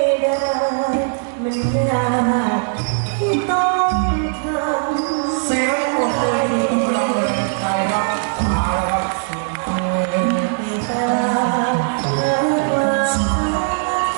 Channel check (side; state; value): left; silent; digital silence